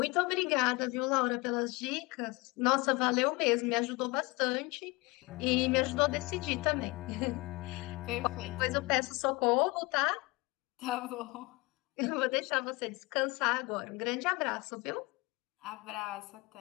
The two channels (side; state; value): right; quieter; 24.3 dB